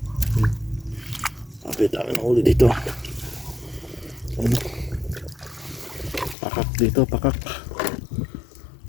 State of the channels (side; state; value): right; drops out; at 6.4 s